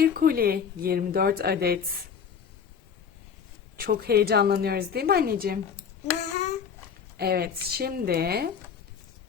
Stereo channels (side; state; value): right; quieter; 6.9 dB